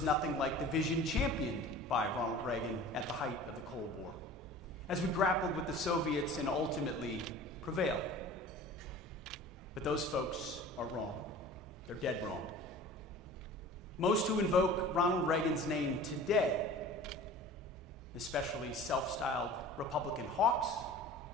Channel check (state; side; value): normal; both; correlation 0.41